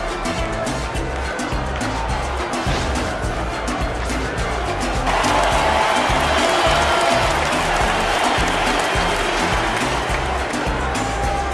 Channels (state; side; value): identical; both; correlation 1.00